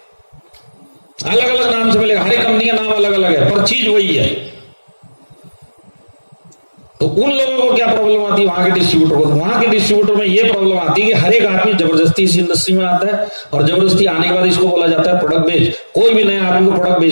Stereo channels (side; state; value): both; inverted; correlation -1.00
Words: अलग अलग नाम से मिलेगा, हर एक कंपनी का नाम अलग अलग है, पर चीज वही है। तो उन लोगों को क्या प्रॉब्लम आती है, वहां के डिस्ट्रीब्यूटर को? वहां के डिस्ट्रीब्यूटर में ये प्रॉब्लम आती है कि हर एक आदमी जबरदस्ती इस इंडस्ट्री में आता है और जबरदस्ती आने के बाद इसको बोला जाता है प्रोडक्ट बेच। कोई भी नया आदमी को प्रोडक्ट